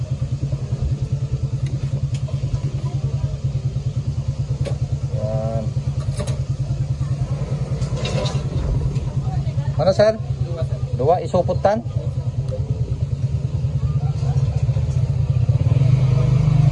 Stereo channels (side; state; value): both; identical; correlation 1.00